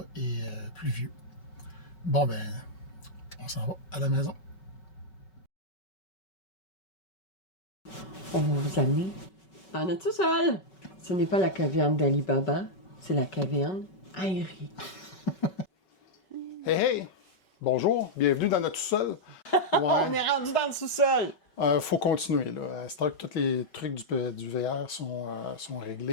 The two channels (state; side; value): late; right; 5.3 ms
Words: et pluvieux. Bon, ben, on s'en va à la maison. On va vous amener en notre sous-sol. Ce n'est pas la caverne d'Ali Baba, c'est la caverne aérienne. Hey, hey! Bonjour, bienvenue dans notre sous-sol. Ouais. On est rendu dans le sous-sol. Faut continuer, là. C'est vrai que tous les trucs du VR sont